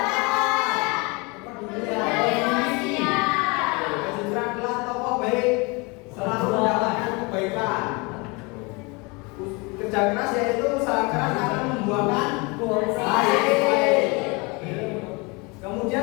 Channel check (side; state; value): right; quieter; 28.1 dB